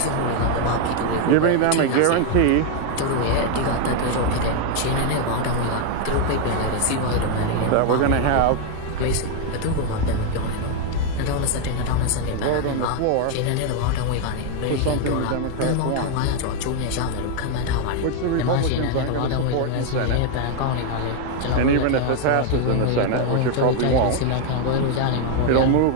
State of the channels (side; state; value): both; different; correlation 0.01